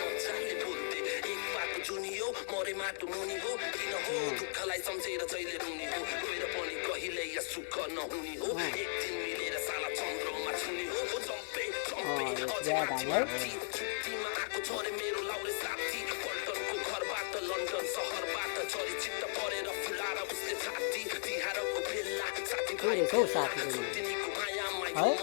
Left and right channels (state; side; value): silent; right; digital silence